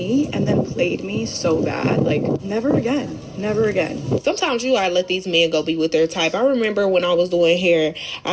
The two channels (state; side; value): identical; both; correlation 1.00